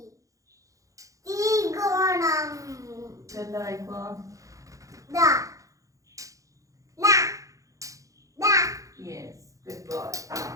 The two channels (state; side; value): late; left; 0.16 ms